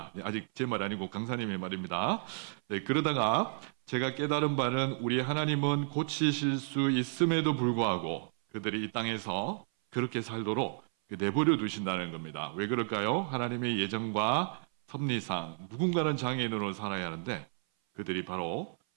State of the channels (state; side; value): silent; left; 56 dB below the other